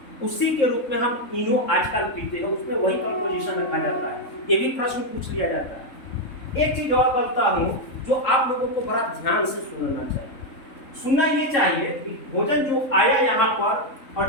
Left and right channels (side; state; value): right; late; 3.5 ms